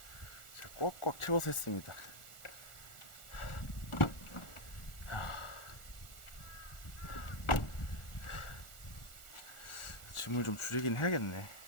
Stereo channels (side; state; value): right; late; 1.4 ms